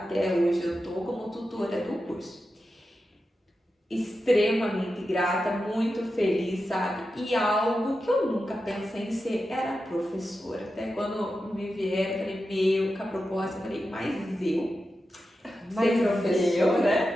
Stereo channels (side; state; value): both; normal; correlation 0.90